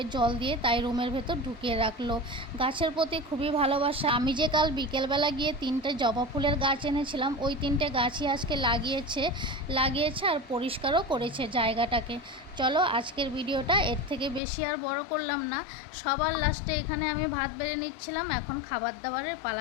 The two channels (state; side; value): drops out; right; at 14.4 s